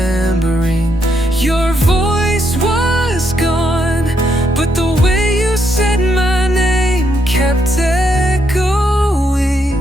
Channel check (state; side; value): normal; both; correlation 0.77